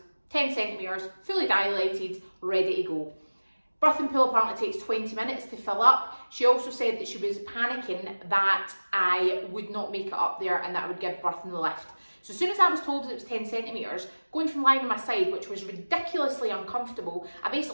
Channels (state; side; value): inverted; both; correlation -1.00